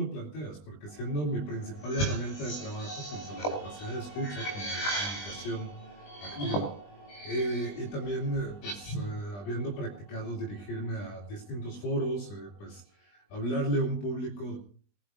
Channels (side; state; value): right; late; 20 ms